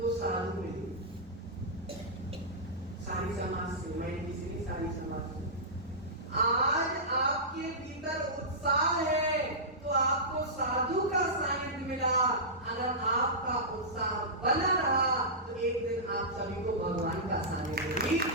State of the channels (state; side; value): normal; both; correlation -0.15